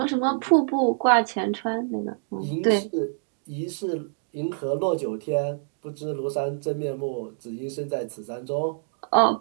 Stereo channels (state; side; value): silent; left; digital silence